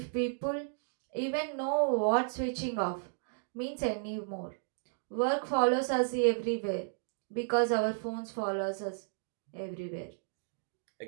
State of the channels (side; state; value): left; silent; digital silence